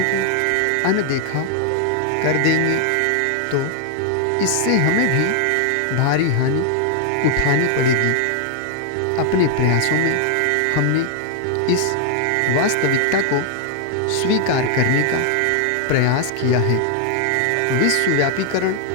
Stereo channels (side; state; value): both; different; correlation 0.00